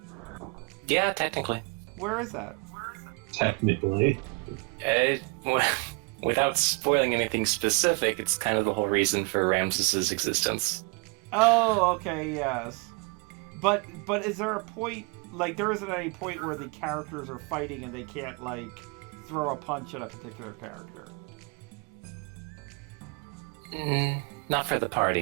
Yeah, technically. Where is that? Technically. Well, without spoiling anything specific, it's kind of the whole reason for Ramses's existence. Oh, okay, yes. But is there a point, like there isn't any point where the characters are fighting and they can't like throw a punch at a particular character? Not for the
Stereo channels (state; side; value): quieter; left; 29.7 dB